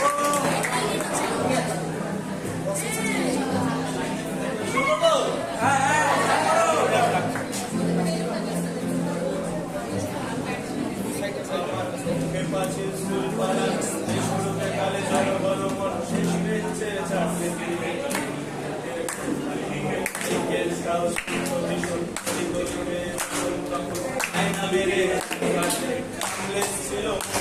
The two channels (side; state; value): both; identical; correlation 1.00